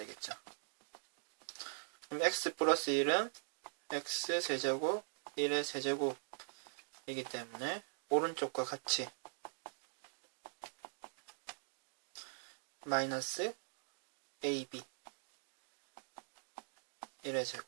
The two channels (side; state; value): left; silent; digital silence